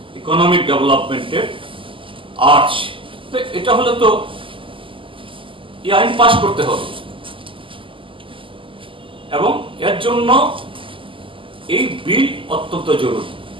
economic ডেভেলপমেন্টের আর্চ। এটা হলে তো এই আইন পাস করতে হবে, এবং এর জন্য এই বিল অত্যন্ত জরুরি।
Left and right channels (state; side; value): late; left; 0.25 ms